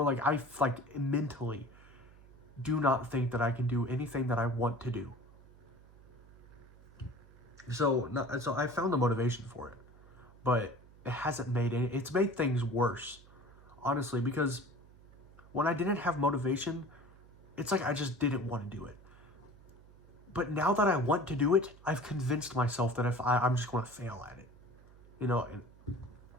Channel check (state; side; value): noise; right; hum, 24 dB below the sound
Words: like I like mentally do not think that I can do anything that I want to do. So I found the motivation for it, but it hasn't made any. It's made things worse, honestly, because when I didn't have motivation, it's like I just didn't want to do it. But now that I want to do it, I've convinced myself that if I'm just going to fail at it, you know. And